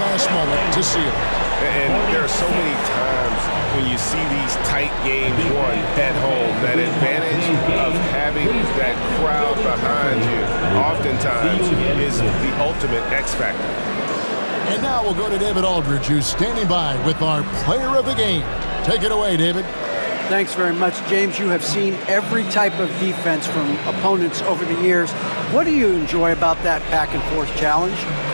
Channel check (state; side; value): inverted; both; correlation -1.00